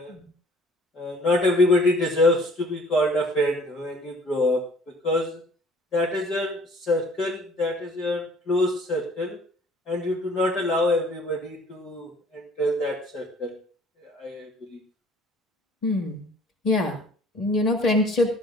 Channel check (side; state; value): both; normal; correlation 0.54